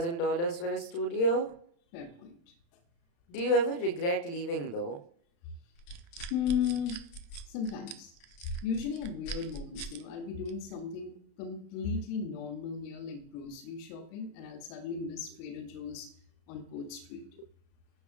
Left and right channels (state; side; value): late; right; 35 ms